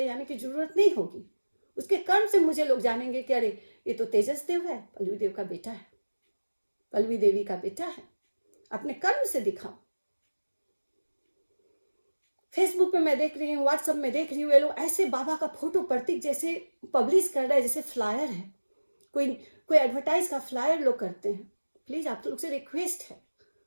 जाने की जरूरत नहीं होगी। उसके कर्म से मुझे लोग जानेंगे कि अरे ये तो तेजस देव है, पल्लवी देव का बेटा है, पल्लवी देवी का बेटा है। अपने कर्म से दिखाओ। फेसबुक पे मैं देख रही हूँ, व्हाट्सएप में देख रही हूँ, ये लोग ऐसे बाबा का फोटो प्रतीक जैसे पब्लिश कर रहा है, जैसे फ्लायर है, कोई एडवर्टाइज का फ्लायर लोग करते हैं। प्लीज आप लोग से रिक्वेस्ट है,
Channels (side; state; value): both; inverted; correlation -1.00